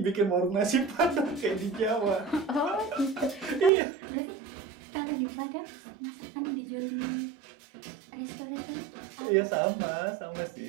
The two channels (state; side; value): drops out; left; at 3.7 s